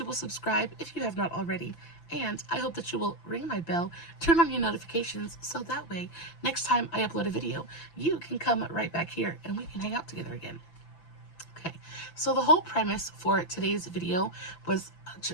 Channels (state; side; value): late; right; 5.9 ms